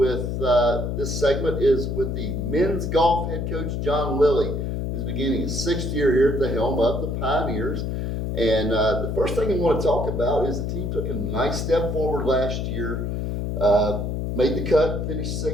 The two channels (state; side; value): noise; left; hum, 2 dB below the sound